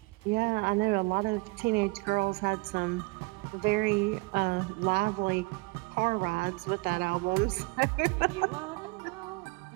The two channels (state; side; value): quieter; left; 27.4 dB